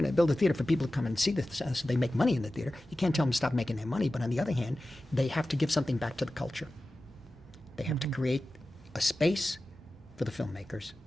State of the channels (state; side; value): normal; both; correlation 0.95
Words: know, build a theater for people to come and see this, so they make money in the theater. You can't tell them to stop making their money. But on the other hand, they have to give something back to the culture. They have to create a space for the filmmakers